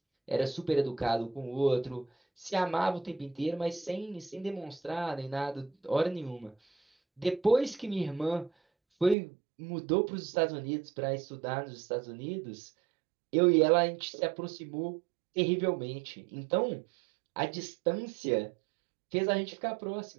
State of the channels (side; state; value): left; drops out; at 9.2 s